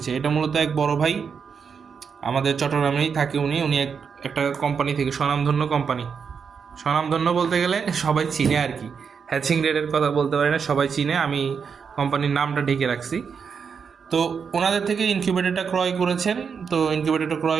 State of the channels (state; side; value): quieter; left; 6.3 dB